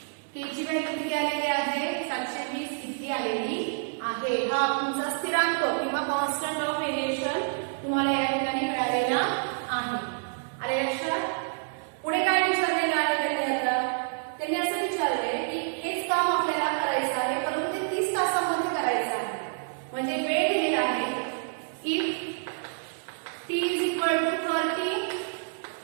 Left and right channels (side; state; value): left; silent; 59 dB below the other